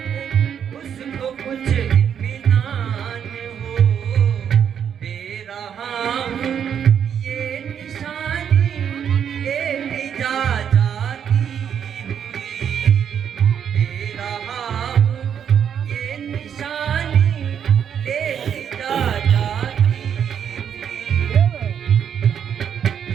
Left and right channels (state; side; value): quieter; left; 8.3 dB